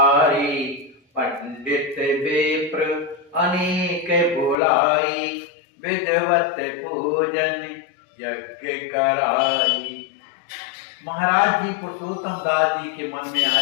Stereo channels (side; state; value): right; drops out; at 4.5 s